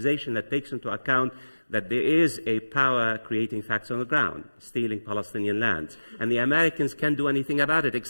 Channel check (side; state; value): both; inverted; correlation -1.00